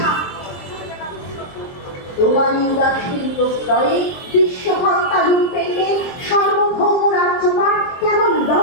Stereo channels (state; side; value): late; right; 23 ms